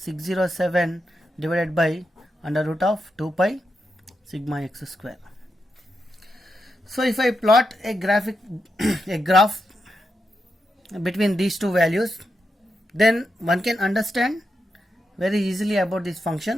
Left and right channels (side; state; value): both; normal; correlation 0.86